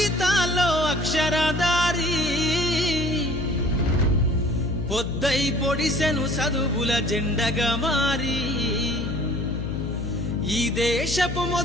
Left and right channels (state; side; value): noise; left; hum, 5 dB below the sound